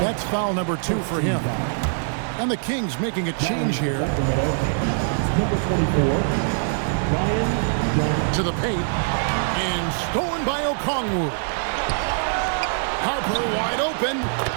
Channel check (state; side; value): silent; left; digital silence